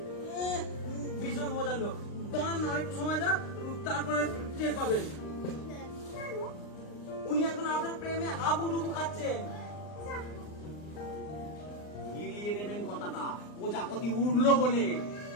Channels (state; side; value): late; right; 39 ms